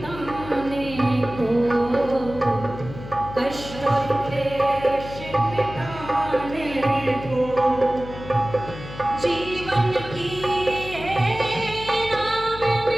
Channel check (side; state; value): left; noise; hum, 12 dB below the sound